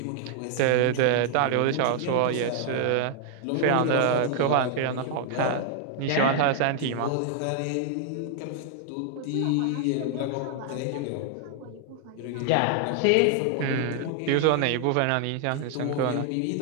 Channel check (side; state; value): both; different; correlation 0.00